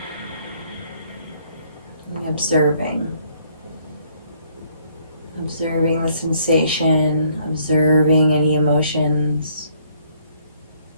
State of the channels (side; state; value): both; inverted; correlation -0.65